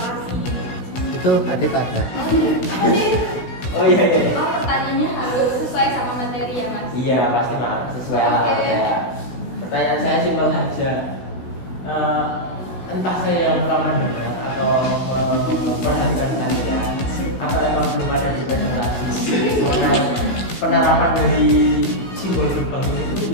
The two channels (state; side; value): late; right; 16 ms